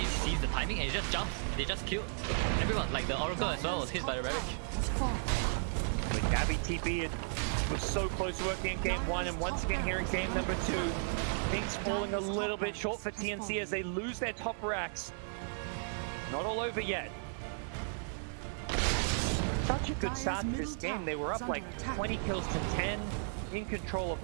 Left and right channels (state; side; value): silent; left; 55 dB below the other